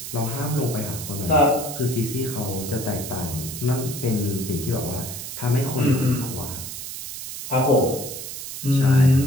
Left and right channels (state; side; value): noise; right; hiss, 8 dB below the sound